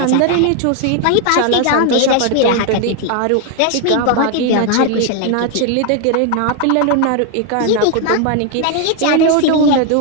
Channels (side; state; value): both; different; correlation 0.01